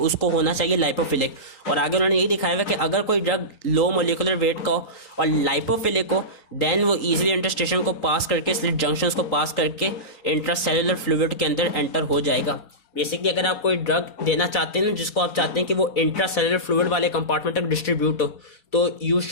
होना चाहिए लाइपोफिलिक। और आगे उन्होंने यही दिखाया हुआ कि अगर कोई ड्रग लो मोलिकुलर वेट का हो और लाइपोफिलिक हो, देन वो इजीली इंटरस्टिशियम को पास करके, स्लिट जंक्शंस को पास करके इंट्रा सेलुलर फ्लूइड के अंदर एंटर हो जाएगा। बेसिकली अगर आप कोई ड्रग देना चाहते हैं जिसको आप चाहते हैं कि वो इंट्रा सेलुलर फ्लूइड वाले कंपार्टमेंट तक डिस्ट्रीब्यूट हो, तो यू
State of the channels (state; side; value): late; right; 3.8 ms